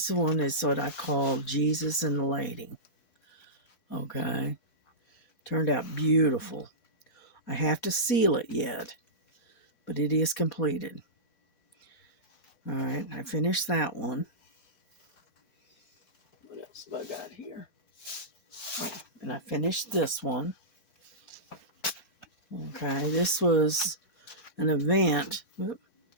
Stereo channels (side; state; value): right; late; 4.2 ms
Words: one is what I call Jesus and the Lady. Okay, turned out beautiful. I have to seal it yet, but it is completed. All right, I finished that one. What else have I got here? Oh, and I finished this one. Okay, this was an event